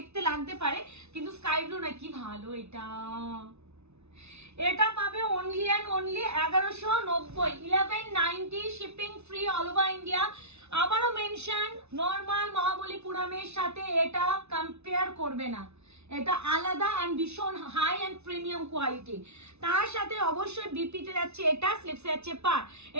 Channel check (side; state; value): left; late; 0.81 ms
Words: লাগতে পারে, কিন্তু স্কাই ব্লু না, কি ভালো এটা। এটা পাবে only and only 1190, 1190, shipping free all over India. আবারও মেনশন, নর্মাল মহাবলীপুরমের সাথে এটা কম্পেয়ার করবে না, এটা আলাদা এন্ড ভীষণ হাই এন্ড প্রিমিয়াম কোয়ালিটি। তার সাথে অবশ্যই বিপিতে যাচ্ছে এটা, স্লিপসে যাচ্ছে পার,